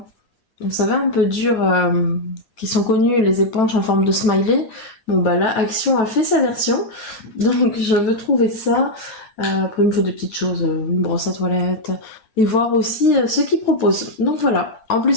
Vous savez, un peu dur, qui sont connues, les éponges en forme de smiley. Bon bah là, Action a fait sa version, donc je veux trouver ça. Après, il me faut des petites choses, une brosse à toilette, et voir aussi ce qu'ils proposent. Donc voilà. En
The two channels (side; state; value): right; late; 9.1 ms